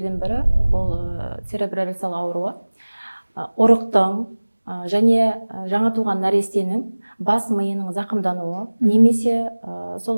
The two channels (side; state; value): both; inverted; correlation -1.00